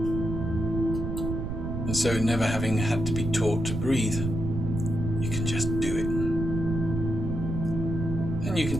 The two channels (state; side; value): noise; right; rumble, 4 dB below the sound